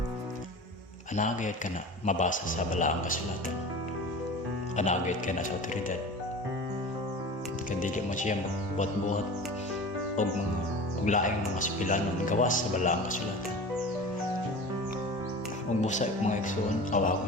anagayod ka na mabasa sa balaang kasulatan. Anagayod ka na sa otoridad. Kadili mo siya magbuhat-buhat og laing mga sipilanon gawas sa balaang kasulatan. Ug busa mga igsoon,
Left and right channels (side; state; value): both; normal; correlation 0.35